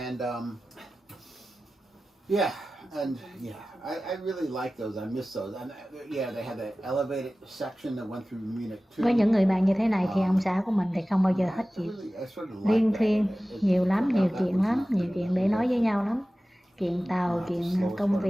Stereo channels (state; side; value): normal; both; correlation 0.96